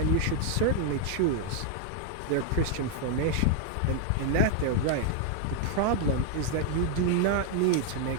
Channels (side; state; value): both; different; correlation 0.00